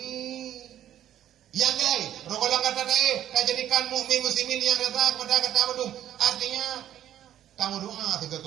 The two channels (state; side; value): quieter; left; 11.5 dB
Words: Yang lain, rokolang kata tak jadikan mukmin muslimin yang rata kepada kata badum. Artinya kamu doa juga